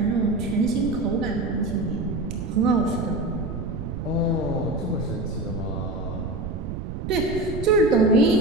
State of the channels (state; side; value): noise; right; rumble, 6 dB below the sound